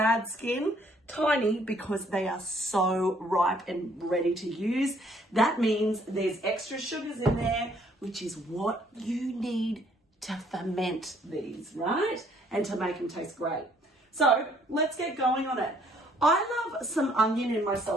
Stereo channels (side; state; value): both; normal; correlation 0.64